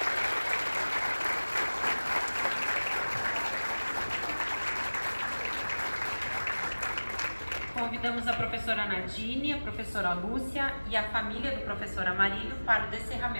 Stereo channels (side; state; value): both; inverted; correlation -1.00